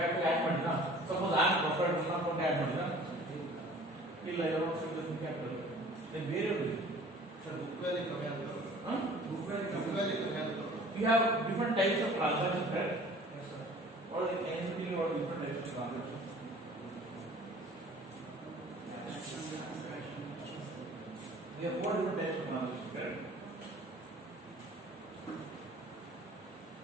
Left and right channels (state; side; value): normal; both; correlation 0.48